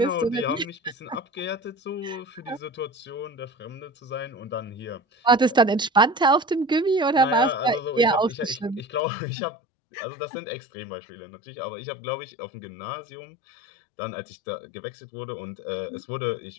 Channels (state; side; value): drops out; right; at 9.0 s